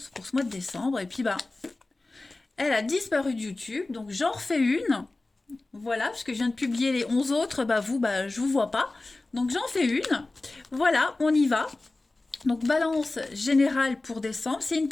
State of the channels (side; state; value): right; quieter; 3.1 dB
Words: pour ce mois de décembre, et puis elle a disparu de YouTube, donc j'en refais une. Voilà, parce que je viens de publier les 11 autres, je vous vois pas. Donc j'en fais une. Voilà, on y va. Donc balance générale pour décembre, c'est une